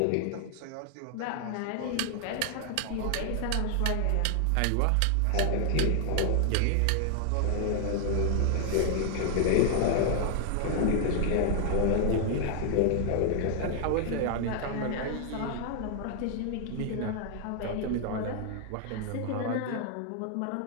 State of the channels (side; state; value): both; different; correlation 0.00